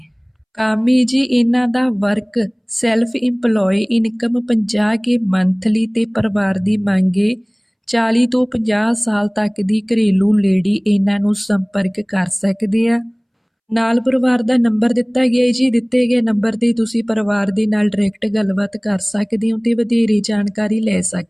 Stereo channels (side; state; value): both; identical; correlation 1.00